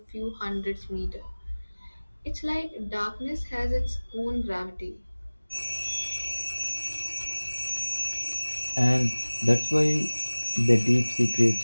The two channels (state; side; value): inverted; both; correlation -1.00